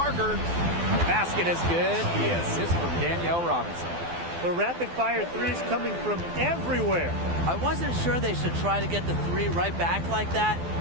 Basket is good. The assist from Danielle Robinson. The rapid-fire threes coming from everywhere. I wasn't sure they should try to get the three right back like that,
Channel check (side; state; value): left; late; 12 ms